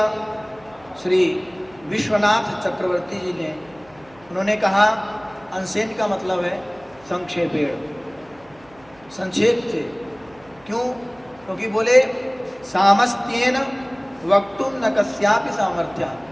श्री विश्वनाथ चक्रवर्ती जी ने, उन्होंने कहा अंशेन का मतलब है संक्षेपेण, संक्षेप से। क्यों? क्योंकि बोले सामस्त्येन वक्तुम न कस्यापि सामर्थ्य,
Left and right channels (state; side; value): noise; right; hum, 27 dB below the sound